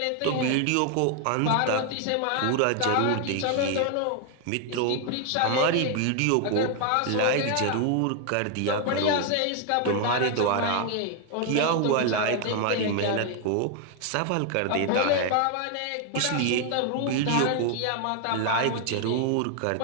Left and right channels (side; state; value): both; different; correlation 0.00